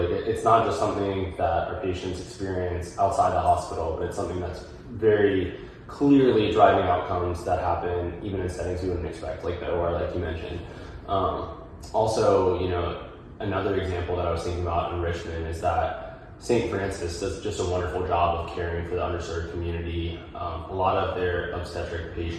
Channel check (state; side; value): identical; both; correlation 1.00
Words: it's not just something that our patients experience outside the hospital, but it's something that's very clearly driving outcomes that happen even in settings we wouldn't expect, like the OR, like you mentioned. Also, another example that I was thinking about in Richmond is that St. Francis does just a wonderful job of caring for the underserved community. A lot of their obstetric